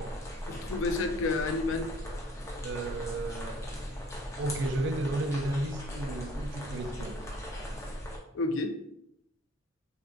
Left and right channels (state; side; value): normal; both; correlation 0.55